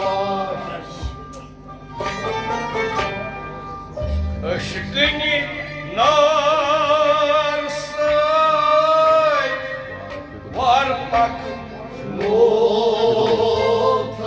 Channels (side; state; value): both; identical; correlation 1.00